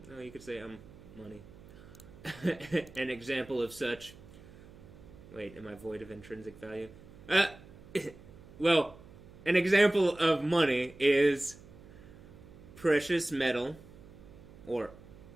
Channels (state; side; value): noise; right; hum, 20 dB below the sound